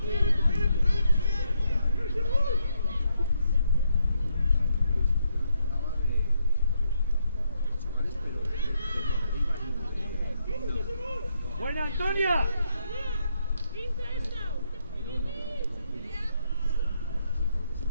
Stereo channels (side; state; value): both; inverted; correlation -0.76